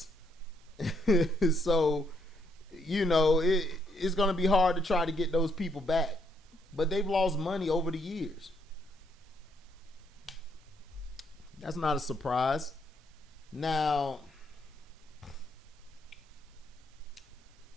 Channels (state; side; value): normal; both; correlation 0.73